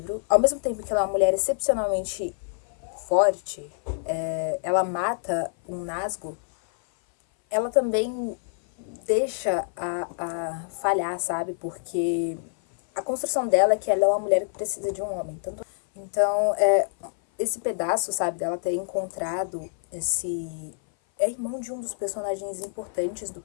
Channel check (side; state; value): right; silent; 57 dB below the other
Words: Ao mesmo tempo que ela é uma mulher excepcionalmente forte, ela mata um Nazgûl, ela também deixa a falhar, sabe? Porque a construção dela é que ela é uma mulher que precisa de um homem. Então, esse pedaço, sabe, dela ter encontrado esse... É irmão de um dos personagens importantes do